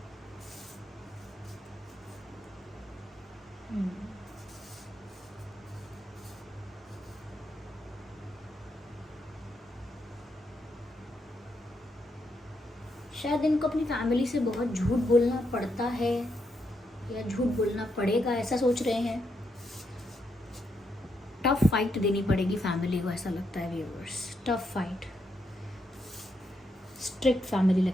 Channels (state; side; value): normal; both; correlation 0.80